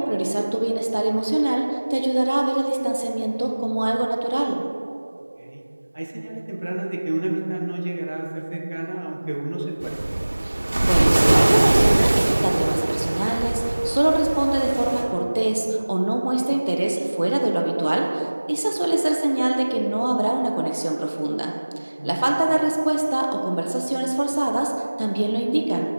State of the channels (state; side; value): inverted; both; correlation -1.00